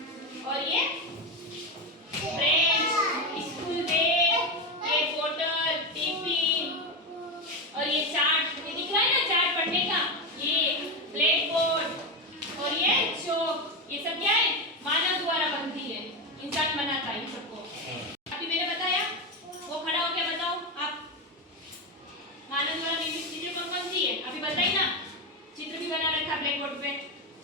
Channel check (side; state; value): both; normal; correlation 0.14